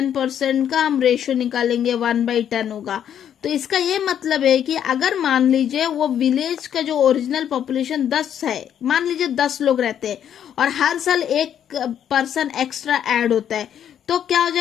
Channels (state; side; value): quieter; right; 9.5 dB